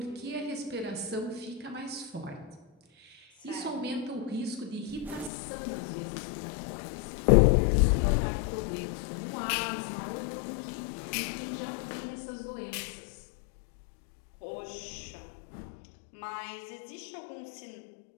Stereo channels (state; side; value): drops out; right; at 5.3 s